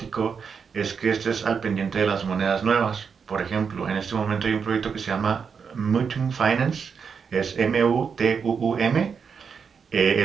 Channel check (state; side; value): quieter; left; 6.2 dB